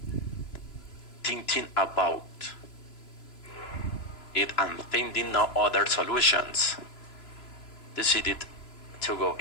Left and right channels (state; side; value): late; right; 2.9 ms